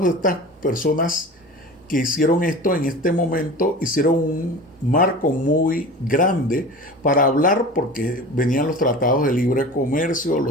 de estas personas que hicieron esto en este momento hicieron un marco muy grande para hablar, porque venían los tratados de libre comercio,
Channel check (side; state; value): both; normal; correlation 0.35